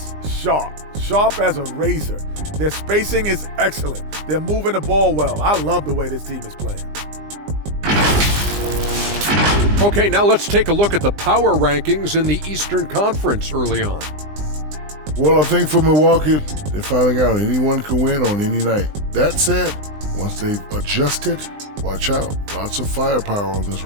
sharp as a razor. Their spacing is excellent. They're moving the ball well. I love the way this team is playing. Okay, now let's take a look at the power rankings in the Eastern Conference early on. Well, I think for Milwaukee, they're finding out anyone can win on any night. That said, once they've adjusted, watch out. Lots of firepower on this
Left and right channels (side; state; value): left; late; 20 ms